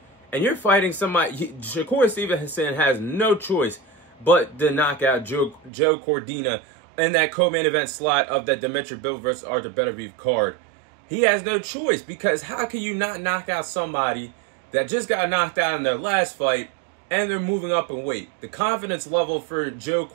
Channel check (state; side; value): drops out; left; at 5.7 s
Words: And you're fighting somebody. Shakur Stevenson has no choice but to knock out Joe Cordina in that co-main event slot of that Dimitri Bivol versus Arthur Beterbiev card. He has no choice, because how can you not knock out somebody that just got knocked out in their last fight and they're moving up in weight? The confidence level for Joe